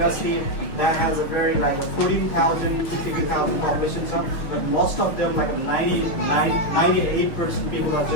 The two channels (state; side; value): late; right; 6.3 ms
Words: that has a very like a 14,000 to 15,000 population, so, but most of them like a 98% people are